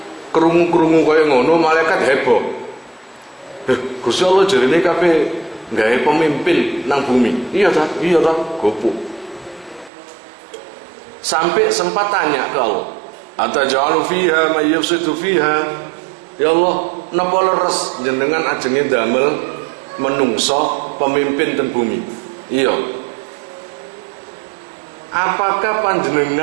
kerungu-kerungu kaya ngono, malaikat heboh. Gusti Allah jarine kabeh gawe pemimpin nang bumi. Iya ta? Gopuk. Sampai sempat tanya ke Allah, ataj'alu fiha may yufsidu fiha? Ya Allah, napa leres jenengan ajenge damel menungso pemimpin ten bumi? Iya. Apakah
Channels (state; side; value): drops out; left; at 9.9 s